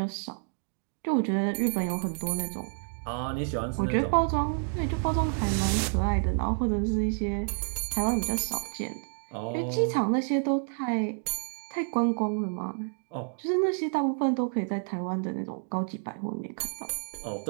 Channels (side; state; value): left; silent; 58 dB below the other